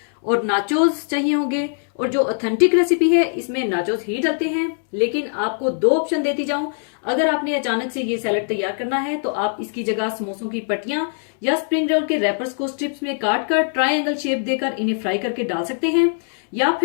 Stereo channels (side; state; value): right; silent; 65 dB below the other